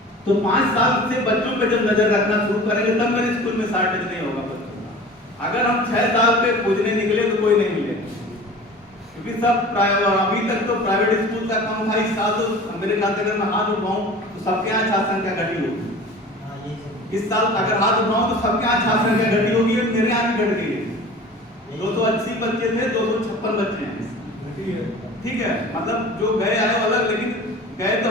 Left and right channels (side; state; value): both; normal; correlation 0.40